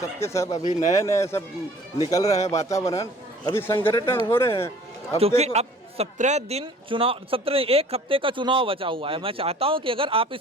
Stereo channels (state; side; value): normal; both; correlation 0.51